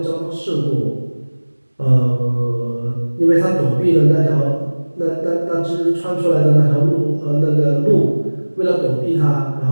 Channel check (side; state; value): both; inverted; correlation -1.00